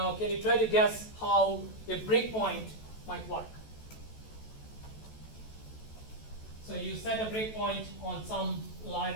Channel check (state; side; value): late; right; 14 ms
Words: can you try to guess how a breakpoint might work? So you set a breakpoint on some